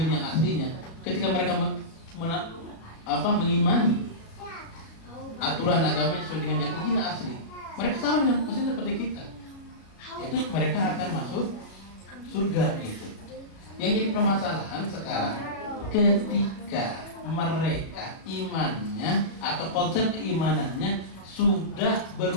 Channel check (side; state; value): right; late; 36 ms